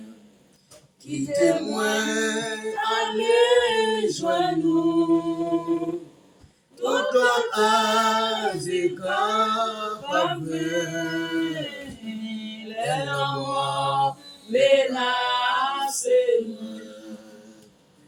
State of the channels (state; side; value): identical; both; correlation 1.00